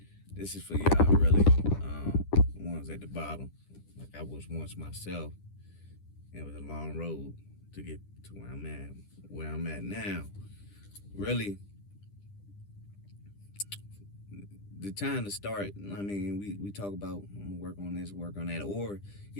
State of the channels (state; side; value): late; right; 10 ms